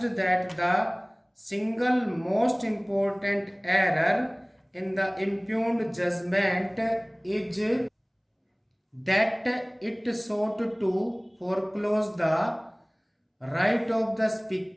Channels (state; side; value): identical; both; correlation 1.00